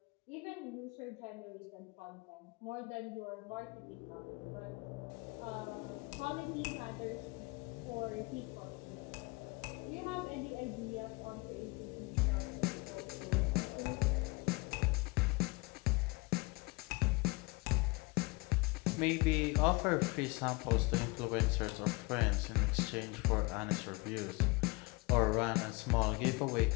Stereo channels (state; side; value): quieter; right; 25.9 dB